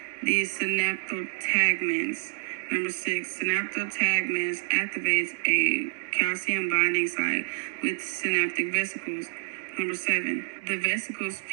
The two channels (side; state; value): left; silent; digital silence